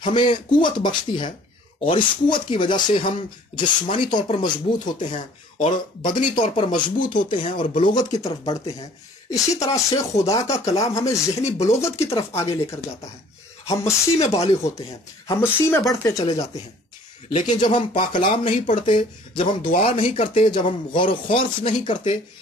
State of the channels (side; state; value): both; normal; correlation 0.53